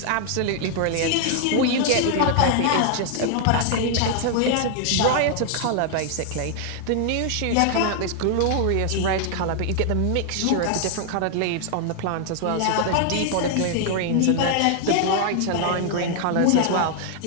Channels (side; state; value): both; different; correlation 0.00